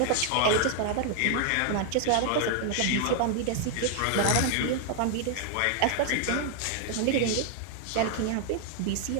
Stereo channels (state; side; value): different; both; correlation 0.00